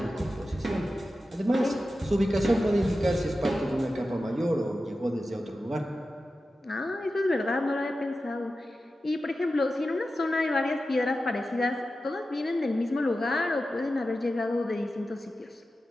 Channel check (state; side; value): normal; both; correlation 0.93